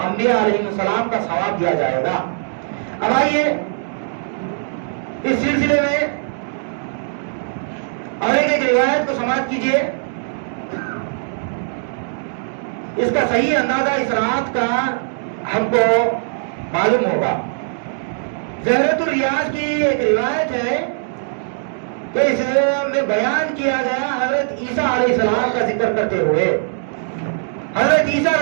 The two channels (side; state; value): left; silent; digital silence